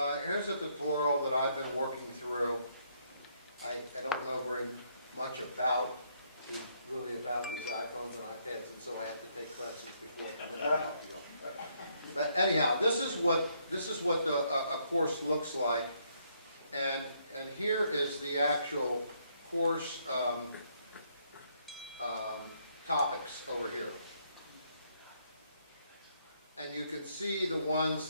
here's a tutorial that I've been working through. I don't know very much about these iPhones and iPads, and so I have to take classes before I come in and talk to you. But anyhow, this is what a course looks like, and here is the actual course topics over here. And you can see the ones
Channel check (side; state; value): both; inverted; correlation -0.72